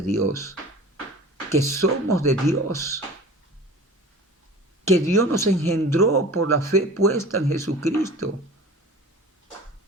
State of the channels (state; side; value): normal; both; correlation 0.40